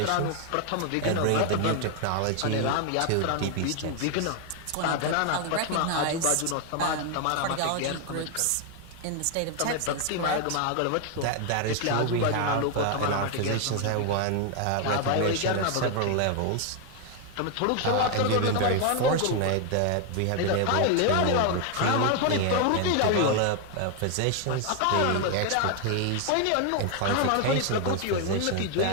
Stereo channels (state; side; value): different; both; correlation 0.01